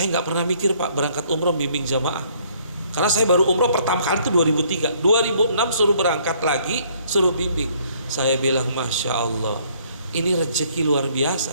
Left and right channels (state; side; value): inverted; both; correlation -0.63